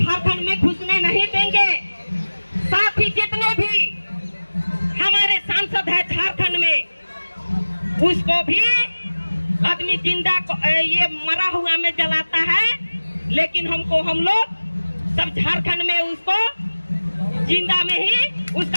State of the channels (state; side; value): inverted; both; correlation -1.00